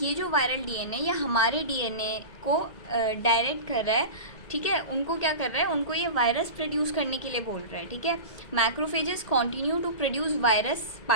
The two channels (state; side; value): late; right; 2.0 ms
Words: जो वायरल डीएनए ये हमारे डीएनए को डायरेक्ट कर रहा है, ठीक है, उनको क्या कर रहा है, उनको ये वायरस प्रोड्यूस करने के लिए बोल रहा है, ठीक है। Macrophages continue to produce virus